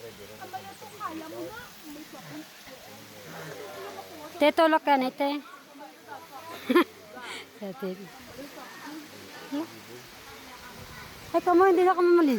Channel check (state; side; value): identical; both; correlation 1.00